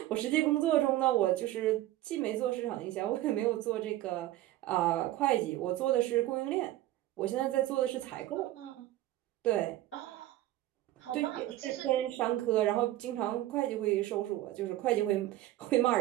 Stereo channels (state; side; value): quieter; left; 15.1 dB